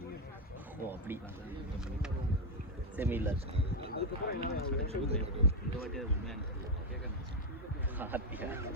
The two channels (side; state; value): both; normal; correlation 0.03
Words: ஓ அப்படி செமி இல்ல இந்த வாட்டி அது உண்மையான கேட்க ஹாப்பியா